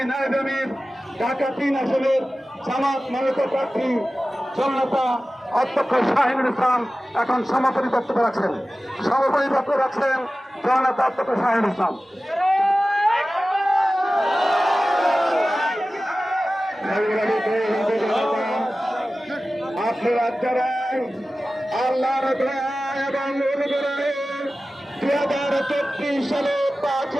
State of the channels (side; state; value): both; normal; correlation 0.96